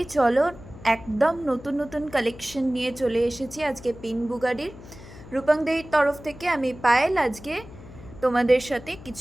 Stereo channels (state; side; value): noise; left; hum, 17 dB below the sound